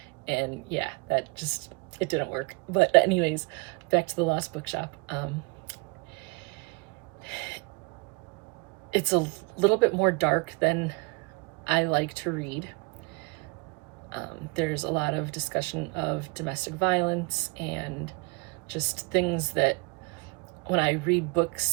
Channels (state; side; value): quieter; left; 29.7 dB